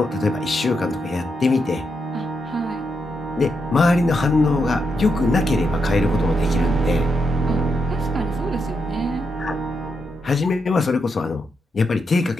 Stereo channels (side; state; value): both; normal; correlation 0.83